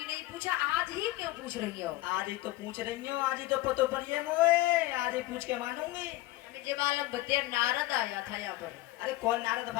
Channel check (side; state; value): right; quieter; 17.9 dB